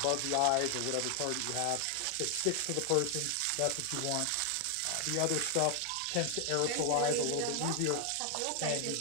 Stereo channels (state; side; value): different; both; correlation 0.00